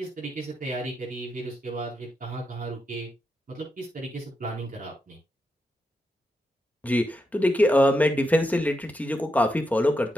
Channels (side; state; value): both; normal; correlation 0.84